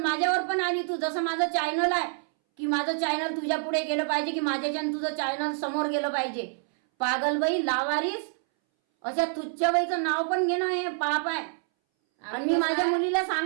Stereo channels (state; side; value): silent; left; 60 dB below the other